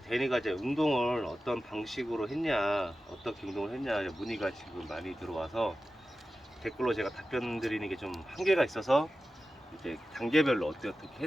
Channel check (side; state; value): both; normal; correlation 0.94